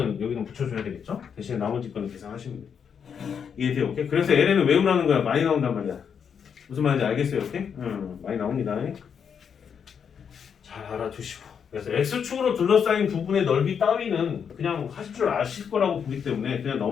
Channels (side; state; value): right; quieter; 7.2 dB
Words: 여기는 붙여줘야 되겠죠? 대신에 나머지 거는 계산하시면 돼요. 이해돼요? 오케이? 그래서 ln은 외우라는 거야. 많이 나온단 말이야. 무슨 말인지 알겠어요? 오케이? 많이 나옵니다. 잘 알아두시고. 그래서 x축으로 둘러싸인 부분의 넓이 따위는 그냥 하실 줄 아실 거라고 보기 때문에 그냥